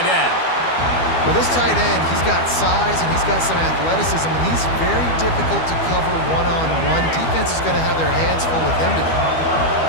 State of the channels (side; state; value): right; late; 12 ms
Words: end. Well, this tight end, he's got size and he's got some athleticism, and he's very difficult to cover one-on-one. Defense is going to have their hands full with him today.